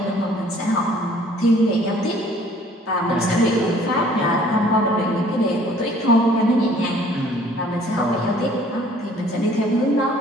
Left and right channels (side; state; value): both; normal; correlation 0.56